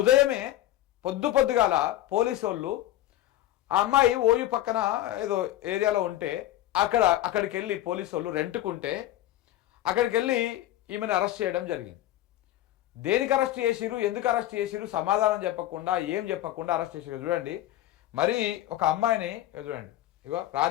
పొద్దుగాల పోలీసు వాళ్ళు ఆ అమ్మాయి ఓయూ పక్కన ఏదో ఏరియాలో ఉంటే అక్కడికి వెళ్ళి పోలీసు వాళ్ళు రెంట్కుంటే అక్కడికి వెళ్ళి ఈమెను అరెస్ట్ చేయడం జరిగింది. దేనికి అరెస్ట్ చేసిరు, ఎందుకు అరెస్ట్ చేసిరు సమాధానం చెప్పకుండా ఏం చెప్పకుండా అరెస్ట్ చేసిరు. చూడండి, మరి ఒక అమ్మాయిని చూడండి, ఇగో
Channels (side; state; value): right; quieter; 14.0 dB